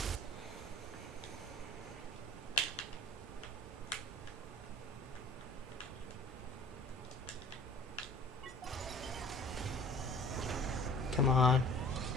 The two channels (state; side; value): normal; both; correlation 0.49